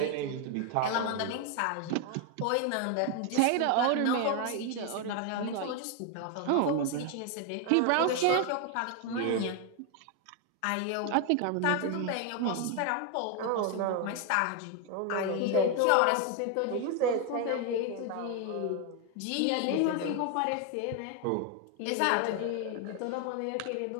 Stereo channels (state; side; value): different; both; correlation 0.01